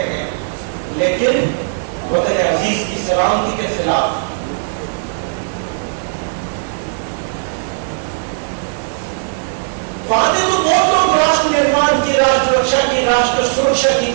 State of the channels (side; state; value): left; silent; digital silence